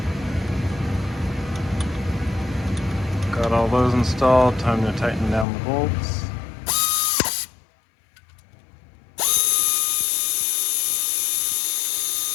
Got all those installed, time to tighten down the bolts.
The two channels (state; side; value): drops out; right; at 5.5 s